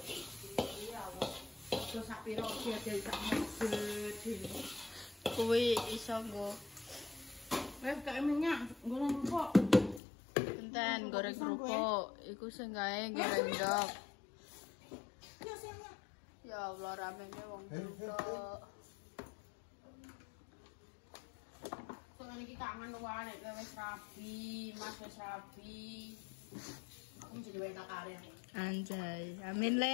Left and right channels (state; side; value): drops out; right; at 10.0 s